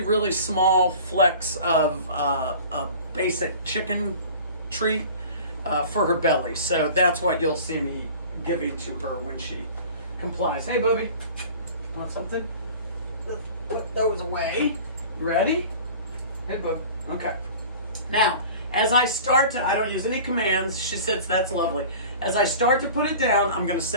small flecks of a basic chicken treat for her belly. So that's what you'll see me giving to her when she complies. Hey, Booby, want something? Let's put those away. You ready? Hey, Boob. Okay. Now, as I start to, I don't use any commands. She says that's lovely. As I start to put it down, I'm going to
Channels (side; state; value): both; inverted; correlation -0.41